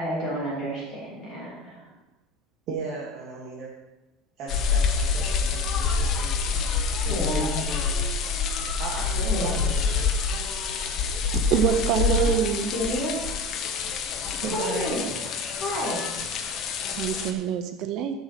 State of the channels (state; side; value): normal; both; correlation 0.30